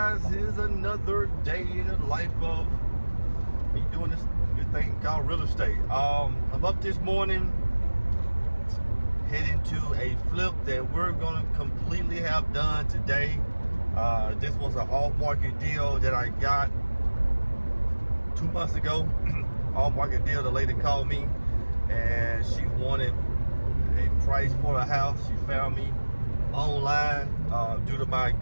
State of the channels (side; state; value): both; inverted; correlation -1.00